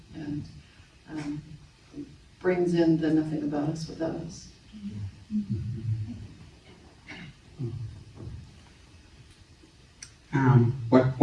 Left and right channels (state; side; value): identical; both; correlation 1.00